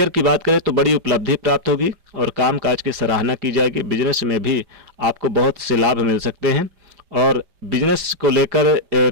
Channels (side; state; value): left; late; 5.1 ms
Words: की बात करें तो बड़ी उपलब्धि प्राप्त होगी और कामकाज की सराहना की जाएगी। बिजनेस में भी आपको बहुत से लाभ मिल सकते हैं और बिजनेस को लेकर